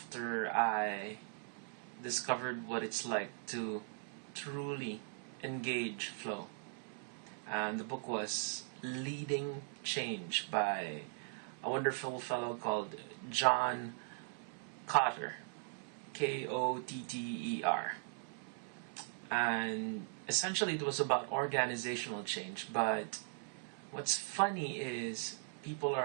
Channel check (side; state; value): left; silent; 51 dB below the other